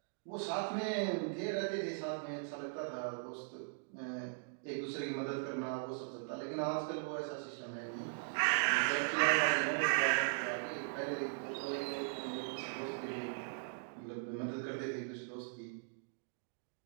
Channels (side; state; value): left; silent; digital silence